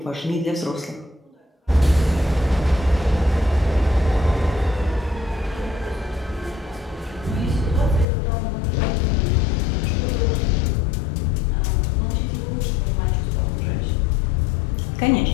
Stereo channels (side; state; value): right; drops out; at 8.1 s